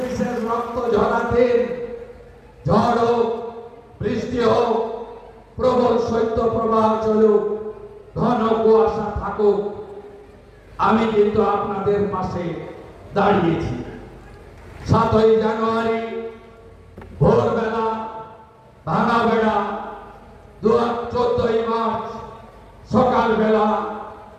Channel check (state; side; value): identical; both; correlation 1.00